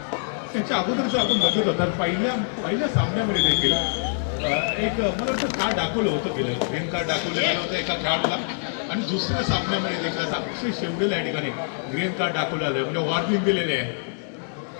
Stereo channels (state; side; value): silent; right; 62 dB below the other